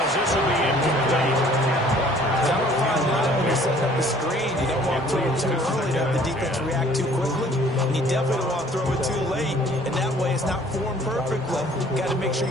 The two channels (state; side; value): normal; both; correlation 0.55